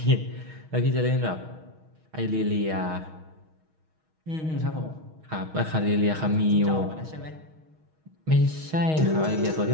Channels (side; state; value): left; late; 6.4 ms